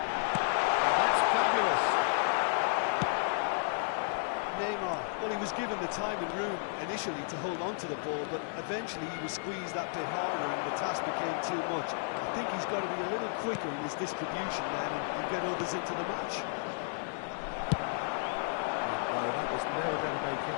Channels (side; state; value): right; silent; digital silence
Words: That's fabulous. Neymar, well, he was given the time and room initially to hold on to the ball, but eventually he was squeezed that bit harder and the task became too much. I think he's got to be a little quicker in his distribution then and get others into the match. Well, that was never going to make it.